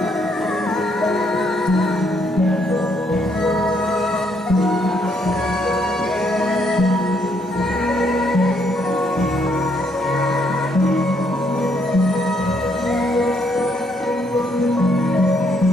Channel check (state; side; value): normal; both; correlation 0.72